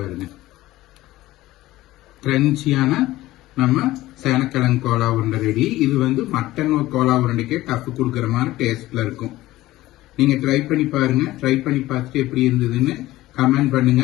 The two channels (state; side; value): quieter; right; 16.7 dB